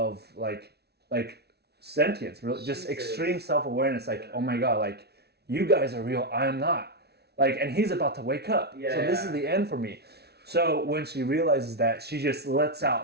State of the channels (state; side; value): late; left; 0.48 ms